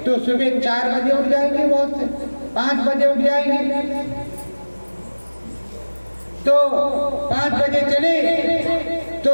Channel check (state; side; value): inverted; both; correlation -1.00